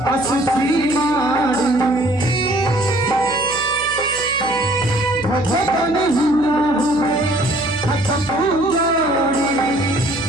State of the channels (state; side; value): noise; right; hum, 17 dB below the sound